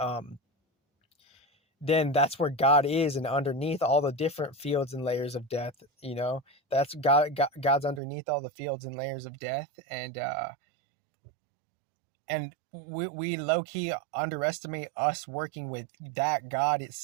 then that's where God is, and underneath all the different fields and layers of death, that's God's underneath all the fields and layers of death. And we low-key underestimate us working with that God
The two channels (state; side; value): drops out; left; at 8.0 s